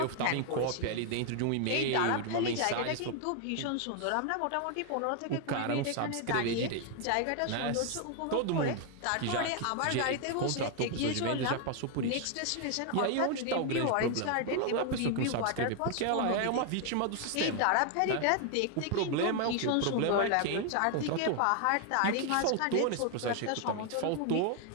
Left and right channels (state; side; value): different; both; correlation 0.00